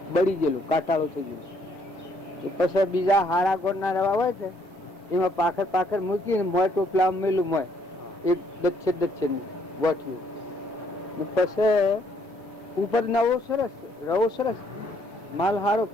બળી ગયેલું, કાટાળો થઈ ગયો. પછી બીજા હારા ગોળ ના રવા હોય છે એમાં પાખર મૂકીને મોય ટોપલા મેલું મોય એક દચ્છે ગોઠવ્યું. પછી ઉપર નવો સરસ રવો સરસ માલ હારો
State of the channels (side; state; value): both; normal; correlation 0.68